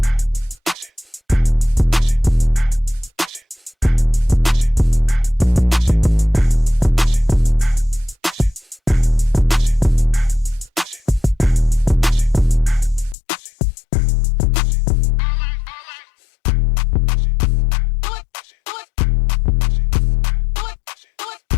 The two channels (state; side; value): drops out; right; at 13.2 s